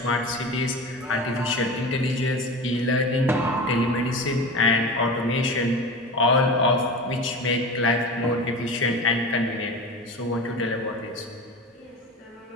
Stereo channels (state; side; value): normal; both; correlation 0.31